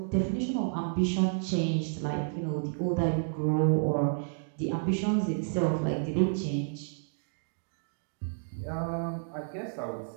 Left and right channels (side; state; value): left; silent; digital silence